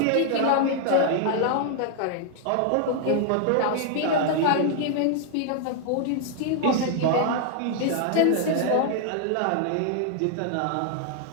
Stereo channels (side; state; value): both; different; correlation 0.00